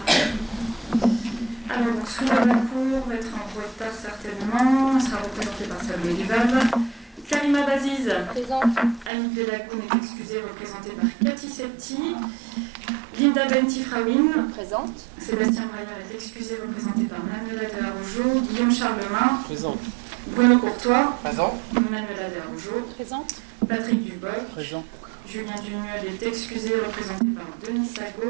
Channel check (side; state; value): left; drops out; at 9.1 s